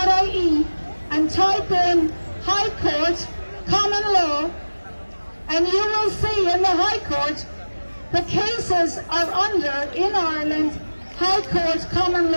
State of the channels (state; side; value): inverted; both; correlation -1.00